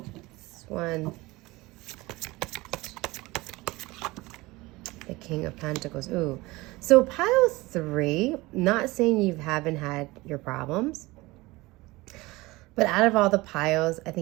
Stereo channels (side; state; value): left; quieter; 21.2 dB